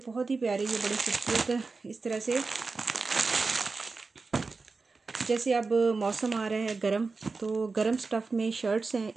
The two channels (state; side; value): quieter; left; 4.1 dB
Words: ही प्यारे, ये बड़े खूबसूरत इस तरह से, जैसे अब मौसम आ रहा है गर्म, तो गर्म स्टफ़ में शर्ट्स हैं